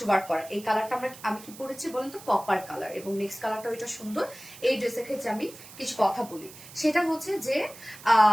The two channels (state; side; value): noise; right; hiss, 18 dB below the sound